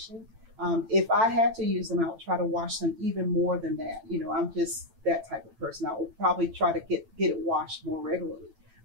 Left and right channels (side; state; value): left; late; 9.0 ms